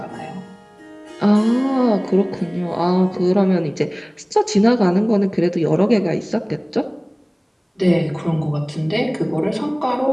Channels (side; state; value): both; identical; correlation 1.00